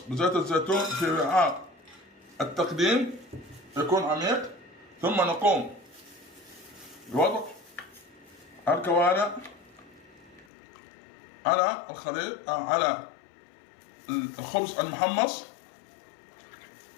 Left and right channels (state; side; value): drops out; right; at 10.5 s